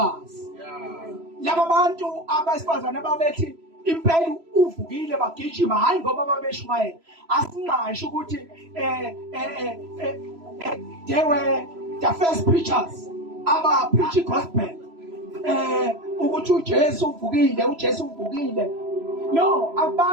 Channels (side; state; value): left; late; 3.0 ms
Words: Laba bantu abesifazane ababethi impela uvukile bagijima hayi ngoba babeshumayela. Asingasho ukuthi they were the first preachers aba preach gospel ukuthi uJesu uvukile, uJesu uvukile. No,